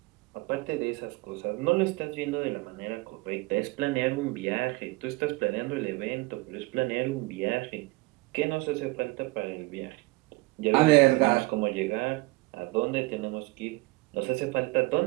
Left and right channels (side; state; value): left; quieter; 23.0 dB